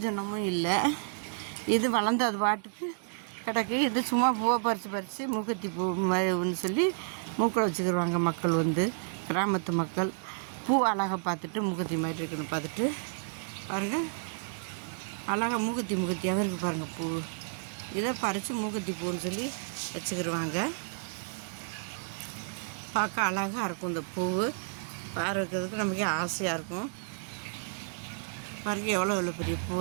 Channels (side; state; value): left; silent; 57 dB below the other